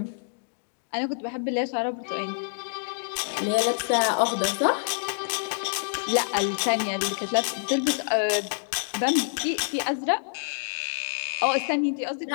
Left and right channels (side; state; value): right; silent; digital silence